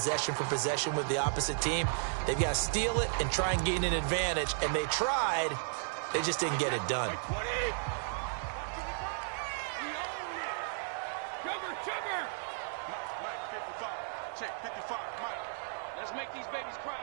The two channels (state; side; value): silent; left; digital silence